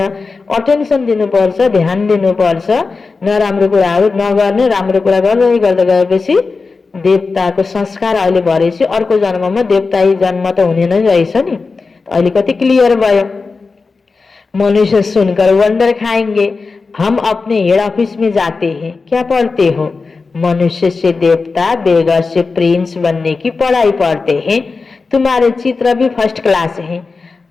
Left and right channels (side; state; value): right; quieter; 4.3 dB